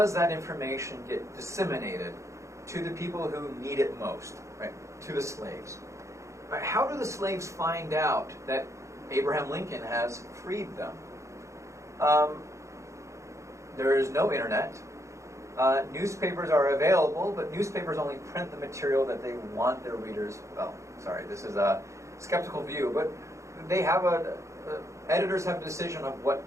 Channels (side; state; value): left; late; 0.14 ms